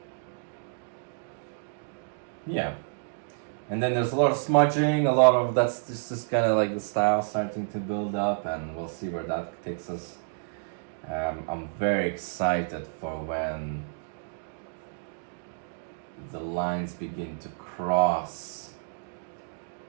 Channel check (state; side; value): silent; left; digital silence